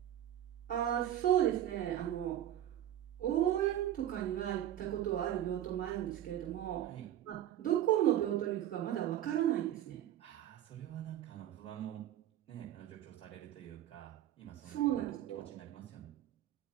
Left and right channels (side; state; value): left; quieter; 11.8 dB